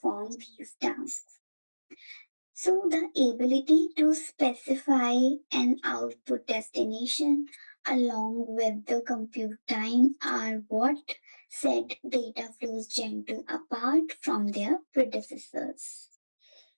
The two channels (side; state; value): both; inverted; correlation -1.00